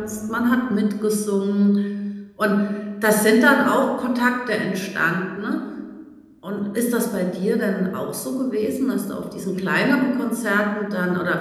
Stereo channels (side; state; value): both; identical; correlation 1.00